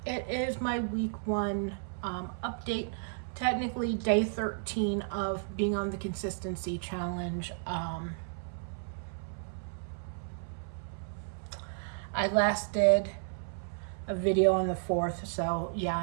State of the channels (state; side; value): silent; left; 56 dB below the other